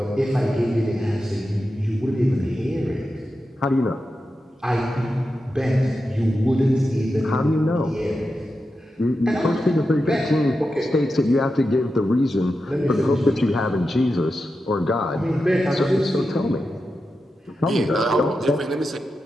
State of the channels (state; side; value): normal; both; correlation 0.90